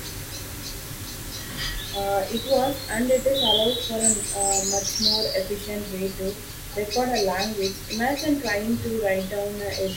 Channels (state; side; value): identical; both; correlation 1.00